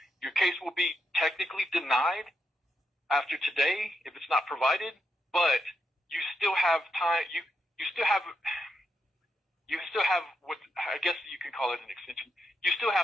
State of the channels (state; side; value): normal; both; correlation 0.83